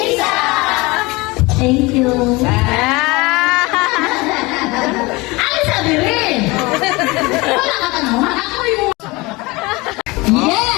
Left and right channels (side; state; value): right; quieter; 23.5 dB